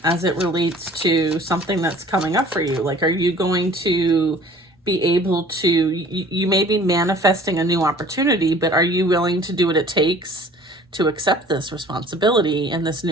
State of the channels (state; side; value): normal; both; correlation 0.49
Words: as it relates to something that's coming up for you. Like, are you going to be able to, you may be manifesting a new opportunity, but are you willing to do what it takes to accept this responsibility and this